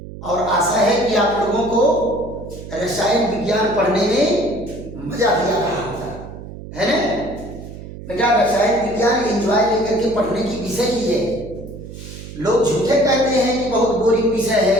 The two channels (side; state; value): right; noise; hum, 13 dB below the sound